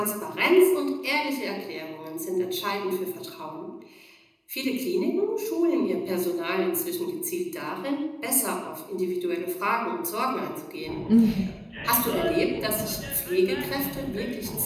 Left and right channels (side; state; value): both; identical; correlation 1.00